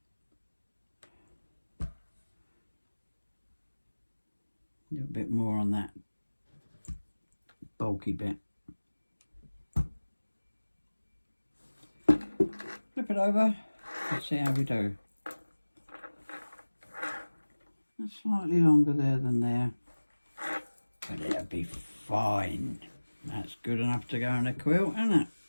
A little bit more on that bulky bit. Flip it over, let's see how we do. That's slightly longer there than there, but it'll be fine. That's good enough to go on a quilt, isn't it?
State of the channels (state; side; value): inverted; both; correlation -1.00